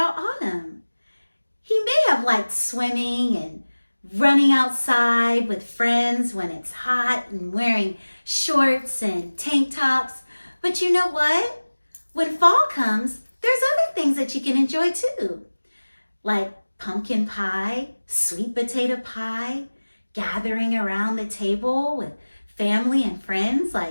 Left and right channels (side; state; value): both; inverted; correlation -1.00